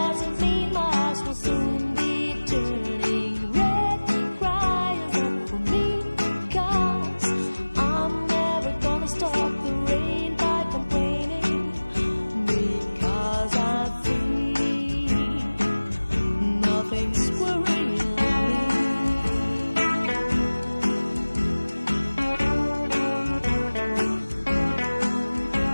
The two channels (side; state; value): both; inverted; correlation -1.00